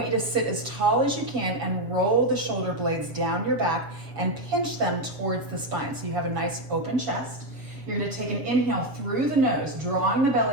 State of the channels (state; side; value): late; left; 7.3 ms